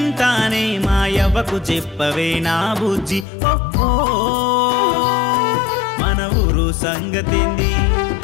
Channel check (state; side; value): drops out; right; at 3.2 s